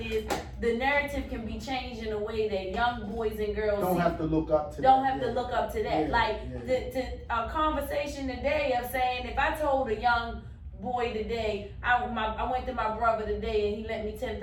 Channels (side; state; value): both; identical; correlation 1.00